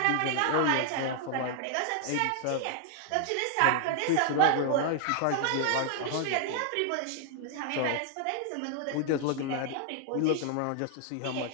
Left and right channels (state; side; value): different; both; correlation 0.00